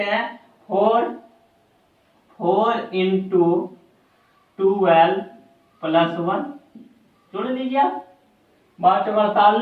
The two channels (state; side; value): identical; both; correlation 1.00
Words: हैं, 4 इंटू 12 प्लस 1, जोड़ लीजिए आप,